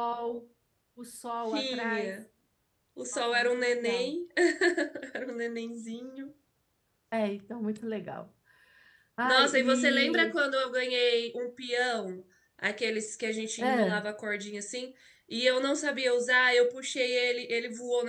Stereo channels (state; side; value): identical; both; correlation 1.00